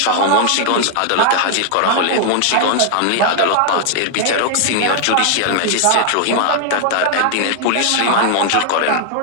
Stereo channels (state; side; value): different; both; correlation 0.00